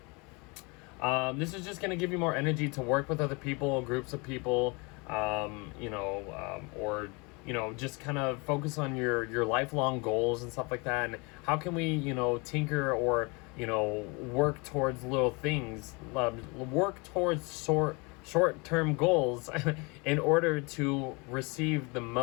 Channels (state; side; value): quieter; right; 29.0 dB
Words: This is just going to give you more energy to work with other people, groups of people, or just kind of focus on your lifelong goals and stuff like that. And how can we, tinker or, work towards little things, work towards short-term goals in order to receive the